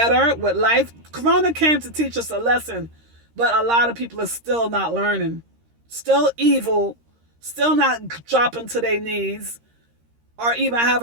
with life. Corona came to teach us a lesson, but a lot of people are still not learning. Still evil. Still not dropping to their knees or even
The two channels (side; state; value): left; late; 13 ms